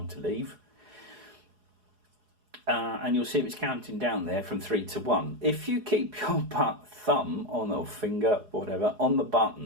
to leave. And you'll see it's counting down there from 3 to 1. If you keep your thumb on or finger, whatever, on the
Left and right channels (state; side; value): late; left; 4.8 ms